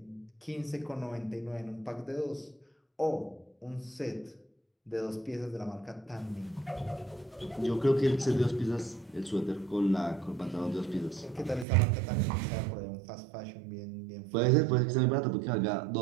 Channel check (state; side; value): drops out; left; at 11.7 s